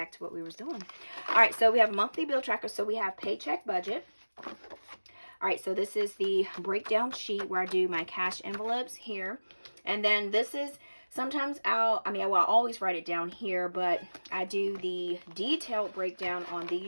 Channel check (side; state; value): both; inverted; correlation -1.00